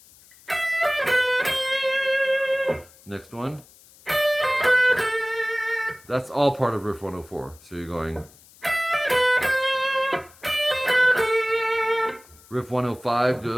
Next one. That's all part of riff 104. So you're going. Riff 105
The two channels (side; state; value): left; noise; hiss, 25 dB below the sound